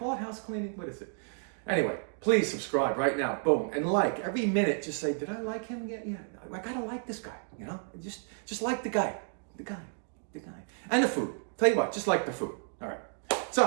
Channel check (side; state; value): left; silent; 57 dB below the other